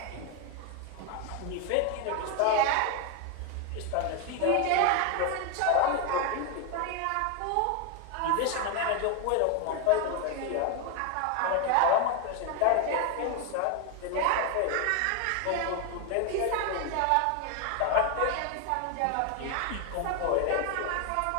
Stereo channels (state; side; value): different; both; correlation 0.01